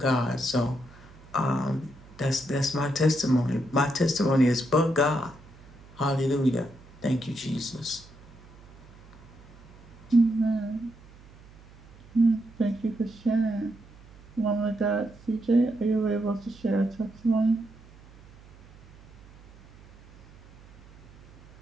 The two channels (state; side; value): noise; right; hum, 23 dB below the sound